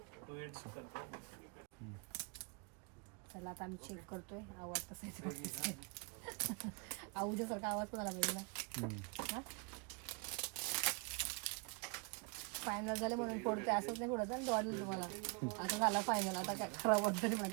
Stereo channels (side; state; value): left; quieter; 33.3 dB